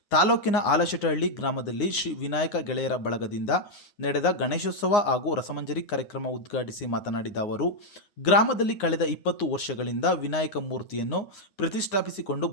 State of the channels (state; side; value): late; right; 9.6 ms